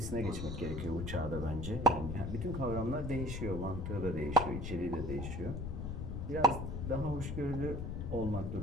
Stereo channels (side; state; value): left; noise; rumble, 4 dB below the sound